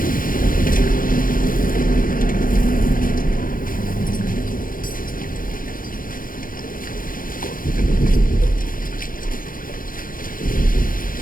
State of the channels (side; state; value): right; late; 0.40 ms